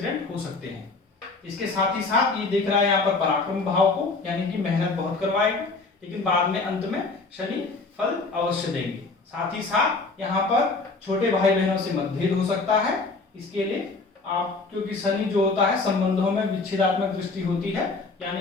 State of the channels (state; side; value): quieter; right; 3.8 dB